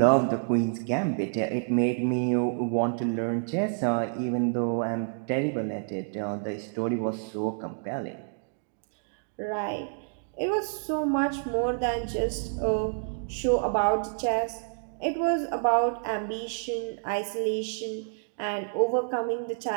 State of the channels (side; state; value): left; silent; digital silence